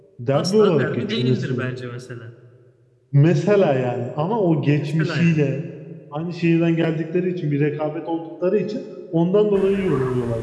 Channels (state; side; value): identical; both; correlation 1.00